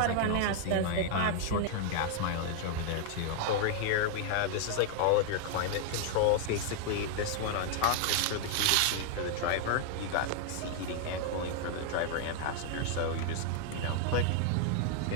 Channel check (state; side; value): different; both; correlation 0.00